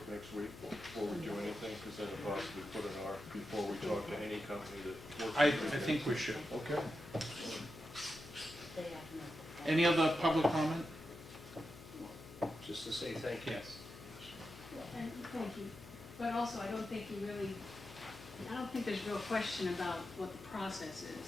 next week before we do anything? Because then it'll possibly put an R before we talk to any company that works. I think we should. Okay. Any other public comment? just to say thank you. Yes. And thank you. But also, I don't think there's real question about what the process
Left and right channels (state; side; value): noise; left; hum, 16 dB below the sound